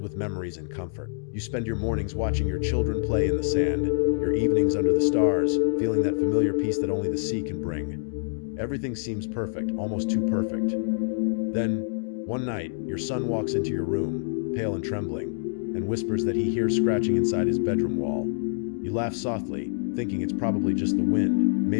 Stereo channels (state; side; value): silent; right; digital silence